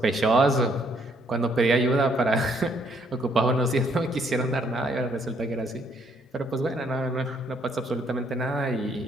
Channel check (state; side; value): normal; both; correlation 0.68